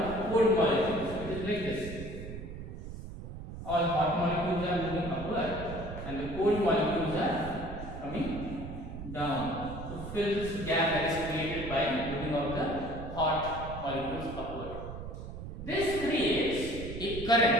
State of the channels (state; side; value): noise; right; rumble, 9 dB below the sound